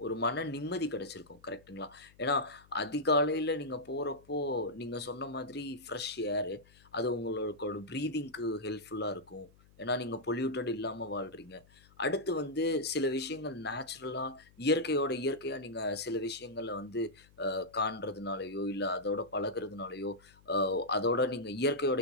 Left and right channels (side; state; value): left; noise; hum, 27 dB below the sound